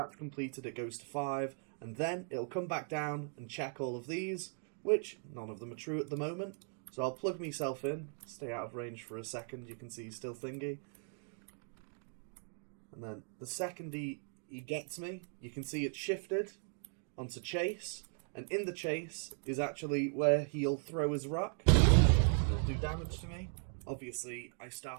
completed, it goes to 5, and then it'll come back down and check all of these, which none of them are true at the moment. So I'll plug myself in, stay out of range for a second. You can see he's still thingy. And then the second he gets me, you can see it's shifted onto chase. And in the chase is actually where he'll throw his rock. It'll do damage to me. obviously I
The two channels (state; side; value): silent; left; 52 dB below the other